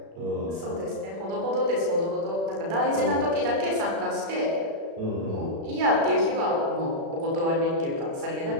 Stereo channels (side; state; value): left; late; 36 ms